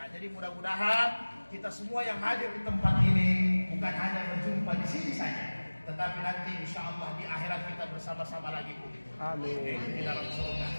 jadi mudah-mudahan kita semua yang hadir di tempat ini bukan hanya berjumpa di sini saja, tetapi nanti insya Allah di akhirat kita bersama-sama lagi. Amin. Di dalam surga.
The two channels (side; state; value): both; inverted; correlation -1.00